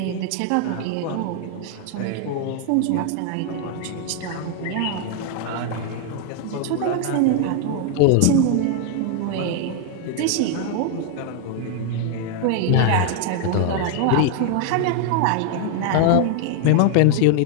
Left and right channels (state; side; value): different; both; correlation 0.00